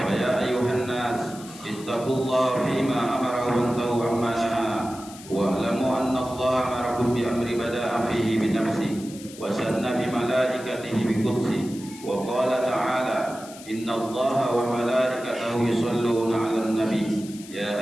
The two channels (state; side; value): noise; left; hiss, 17 dB below the sound